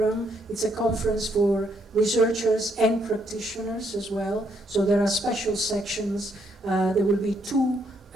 It's a conference for researchers and practitioners as well. So there are special sections. There will be 2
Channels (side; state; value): both; normal; correlation 0.73